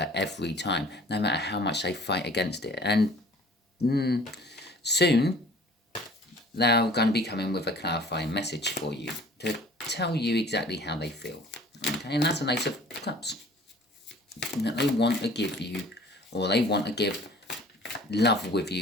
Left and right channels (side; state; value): both; normal; correlation 0.50